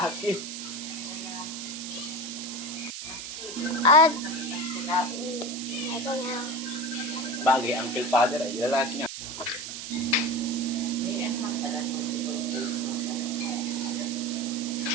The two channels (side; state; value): right; noise; hiss, 8 dB below the sound